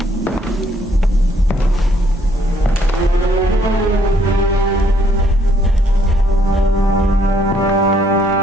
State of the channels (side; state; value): both; normal; correlation 0.68